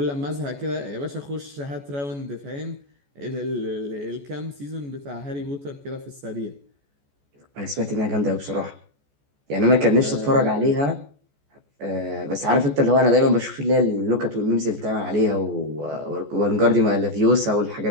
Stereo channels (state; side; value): late; left; 14 ms